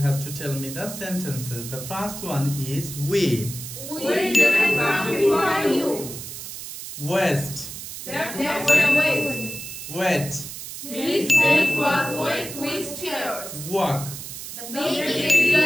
to tell me the sentences. The first one is we. We didn't come before you. West. There were waste. Wet. His face was wet with tears. Walk. The baby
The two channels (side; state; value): right; noise; hiss, 10 dB below the sound